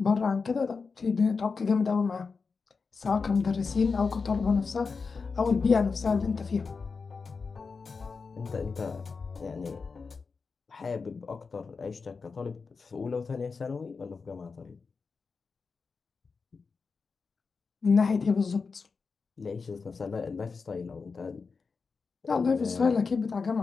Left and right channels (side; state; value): right; quieter; 4.8 dB